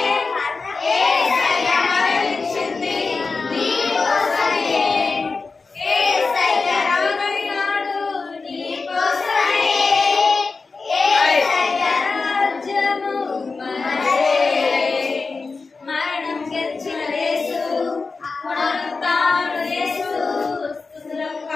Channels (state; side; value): quieter; right; 4.2 dB